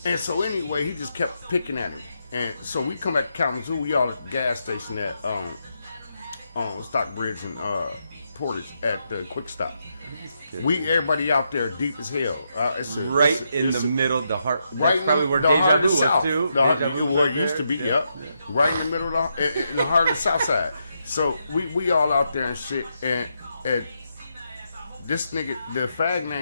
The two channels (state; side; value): inverted; both; correlation -0.81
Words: And so anyway, he just kept picking at him. And so we come back to Kalamazoo. We all at the gas station at Stockbridge and Portage at the Quick Stop. Everybody out there deep as hell. It's in the middle of the heart. Right, that's probably where Deja Vu was too. Where it used to be. Yep. Right in the middle of in the heart of the South Side. So we all out there and shit. And this nigga, the fag